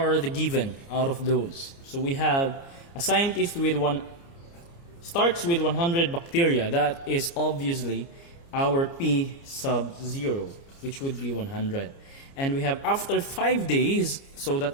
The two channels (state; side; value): late; right; 29 ms